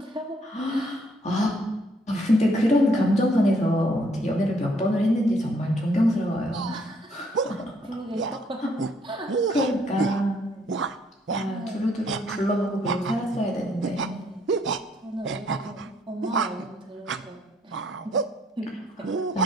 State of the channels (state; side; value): normal; both; correlation 0.68